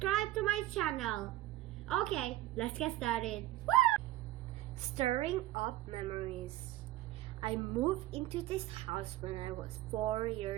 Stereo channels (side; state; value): left; quieter; 15.7 dB